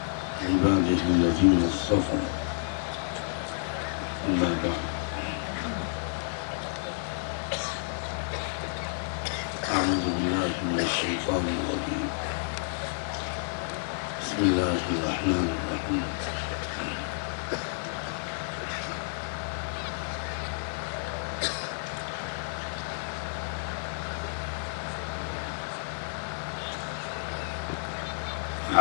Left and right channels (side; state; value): right; silent; digital silence